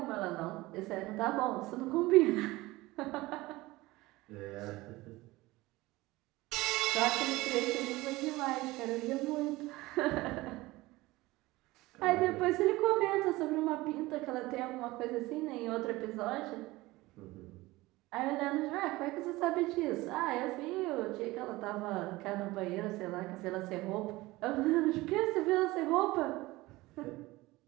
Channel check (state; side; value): quieter; left; 19.8 dB